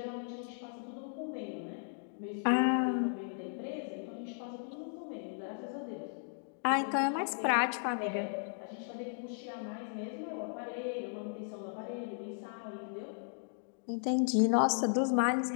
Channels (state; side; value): silent; right; digital silence